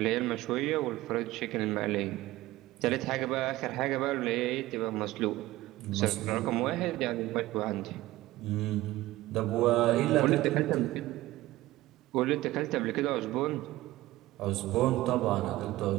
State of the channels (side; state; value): left; quieter; 17.2 dB